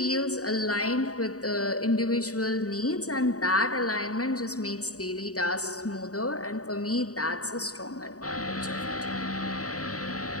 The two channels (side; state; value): right; late; 0.66 ms